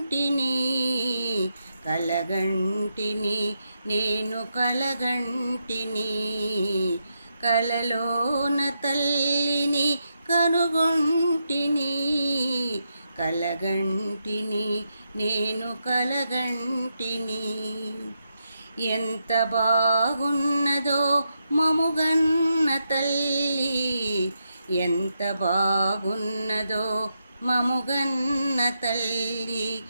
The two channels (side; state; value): both; inverted; correlation -0.83